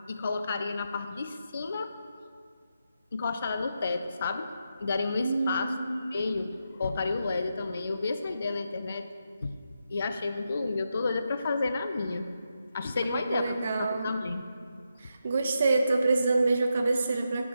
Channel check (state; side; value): inverted; both; correlation -0.85